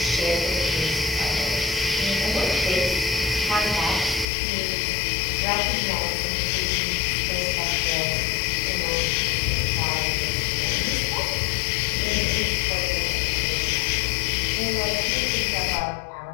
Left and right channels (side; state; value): right; drops out; at 4.2 s